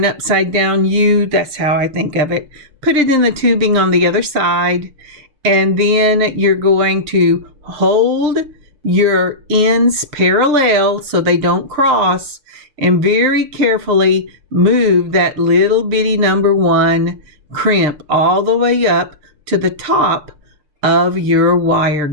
upside down U. That's how I think of it. Put it in the tubing on the other side, and then you're going to hold your ends parallel so they don't cross, and very carefully move that little bitty number 1 crimp all the way up to the top of your wire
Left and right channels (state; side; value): late; left; 6.7 ms